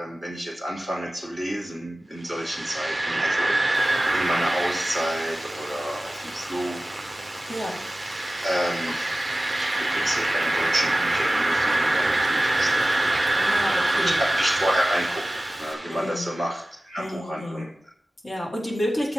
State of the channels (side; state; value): both; normal; correlation 0.96